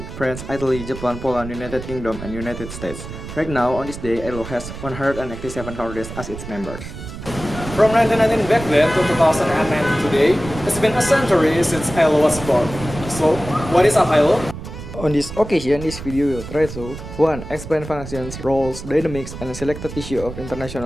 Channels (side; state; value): right; noise; rumble, 11 dB below the sound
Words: France, Italy, Japan, Poland, United Kingdom, and United States. Right now, on this day, ILO has 187 countries as its members. From 1919 back then to 2009 today, it's been a century since ILO was born. So, what is an ILO? On this occasion, this video will try to 1. Explain functions, roles, dynamics, and selected issue of